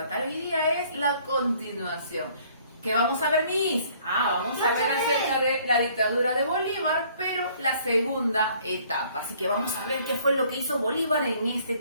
hoy día es la continuación. ¿Qué vamos a ver, Miss? Vamos a ver acerca de la dictadura de Bolívar, pero la segunda etapa. Así que vamos a ver qué fue lo que hizo Bolívar en este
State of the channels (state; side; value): inverted; both; correlation -0.59